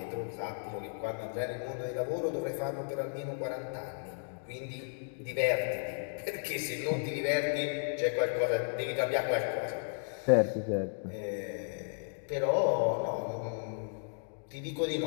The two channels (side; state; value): right; silent; digital silence